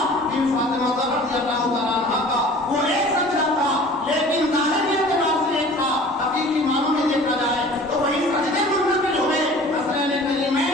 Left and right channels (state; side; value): normal; both; correlation 0.45